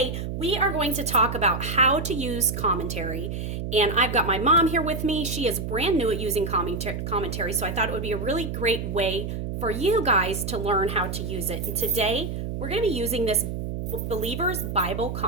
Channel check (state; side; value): noise; right; hum, 4 dB below the sound